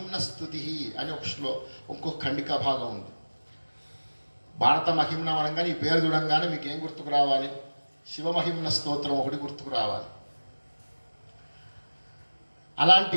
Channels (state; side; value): inverted; both; correlation -1.00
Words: స్తుతి అని ఇంకో ఖండిక భాగం ఉంది. భారత మహిమ్న అనగానే ఈ పేరు చూడంగానే మీకు ఏం గుర్తుకు రావాలి? శివమహిమ్న స్తోత్రం ఒకటి గుర్తుకు రావాలి.